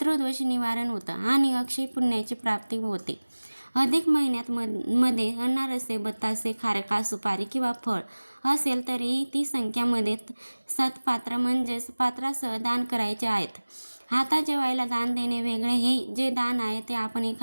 निवारण होतं आणि अक्षय पुण्याची प्राप्ती होते. अधिक महिन्यात मध्ये अनारसे, बतासे, खारका, सुपारी किंवा फळ असेल तरीही ती संख्यामध्ये सत्पात्र म्हणजेच पात्रासह दान करायचे आहेत. आता जेवायला दान देणे वेगळे. हे जे दान आहे ते आपण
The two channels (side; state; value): both; inverted; correlation -1.00